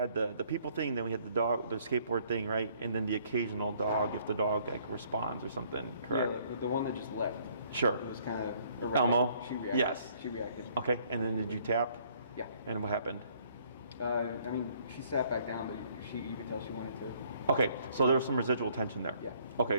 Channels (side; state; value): both; inverted; correlation -0.63